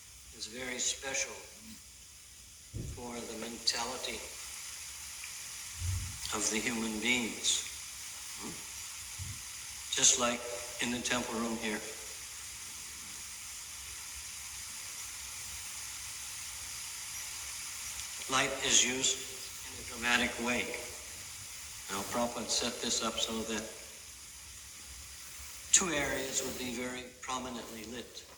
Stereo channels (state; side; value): identical; both; correlation 1.00